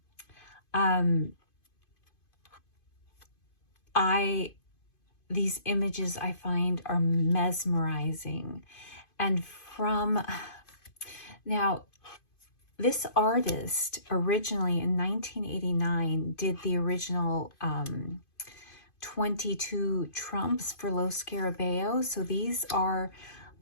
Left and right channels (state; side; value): late; right; 2.5 ms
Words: These images I find are mesmerizing. And now, this artist originally in 1989 did the original 22 trumps for Lo Scarabeo. So these are,